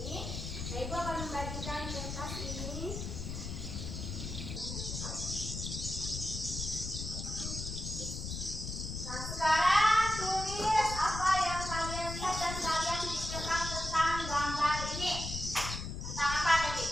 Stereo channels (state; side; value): noise; left; rumble, 6 dB below the sound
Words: Nah, Ibu akan membagikan kertas ini. Nah, sekarang tulis apa yang kalian lihat dan kalian pikirkan tentang gambar ini. Tentang apa tadi?